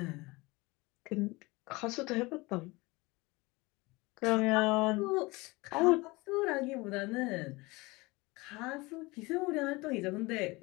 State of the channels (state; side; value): quieter; right; 23.4 dB